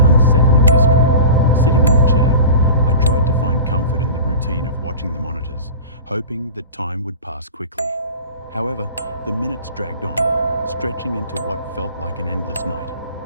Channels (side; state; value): both; inverted; correlation -0.35